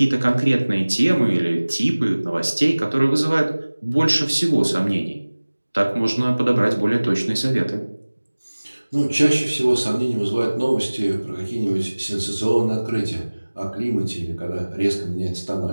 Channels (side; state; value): both; inverted; correlation -1.00